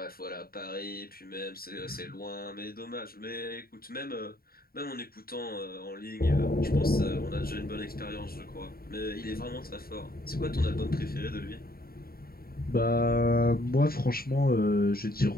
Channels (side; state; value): right; late; 0.43 ms